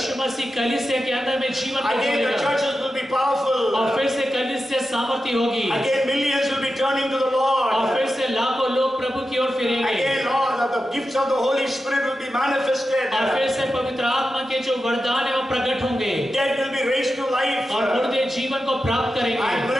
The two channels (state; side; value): normal; both; correlation 0.91